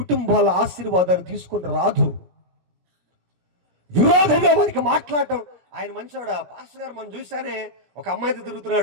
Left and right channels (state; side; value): late; left; 17 ms